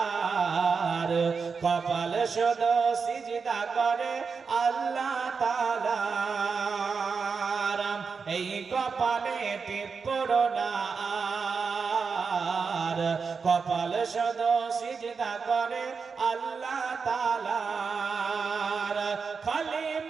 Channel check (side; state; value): left; quieter; 5.3 dB